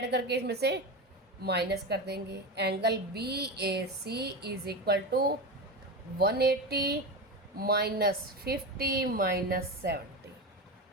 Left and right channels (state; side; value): normal; both; correlation 0.20